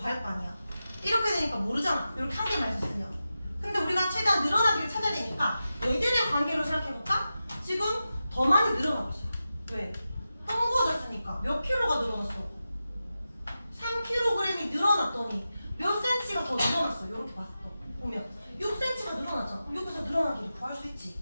거 아니야. 이렇게 되니까 모르잖아. 이렇게 한 개만 있었으면. 근데 우리가 최대한 늘어난 길을 찾아야 되니까 얘들의 관계로 생각해볼까? 지금 더 많이 늘어나고 있어. 왜? 헝구어졌으니까. 몇 킬로가 늘어났어? 3kg이 늘어났더니 몇 cm가 더 늘어났어. 이렇게 봤어. 보면 6cm가 늘어났잖아. 여기서 늘어난 길을 구할 수 있지.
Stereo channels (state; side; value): inverted; both; correlation -0.92